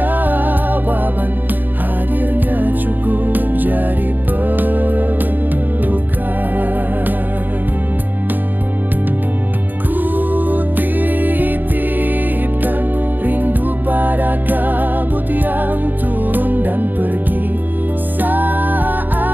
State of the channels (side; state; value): left; late; 0.089 ms